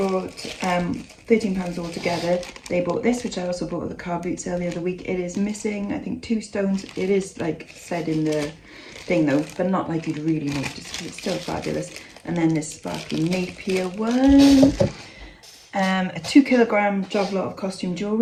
£13 altogether. They bought this, which I also bought at the Carboot sale the other week. It is missing, I think, 2 stones. It is like said in the thing though, but not like you'd really notice. It's still fabulous. And then this sparkly Napier one. A 2 kilogram job lot of costume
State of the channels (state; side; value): identical; both; correlation 1.00